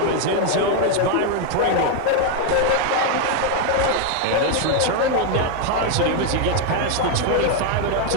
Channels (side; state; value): both; different; correlation 0.01